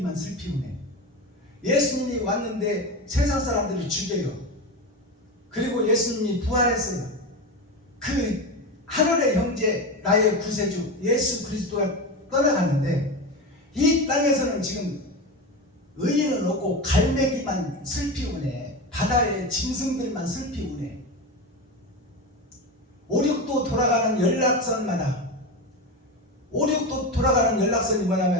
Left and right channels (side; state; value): both; normal; correlation 0.21